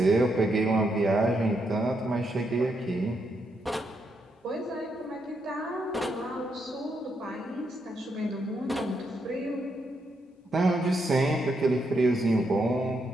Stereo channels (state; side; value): normal; both; correlation 0.80